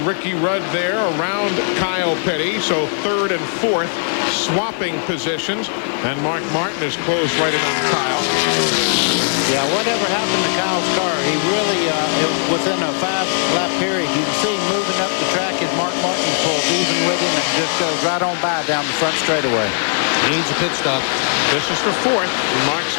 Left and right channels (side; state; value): right; silent; digital silence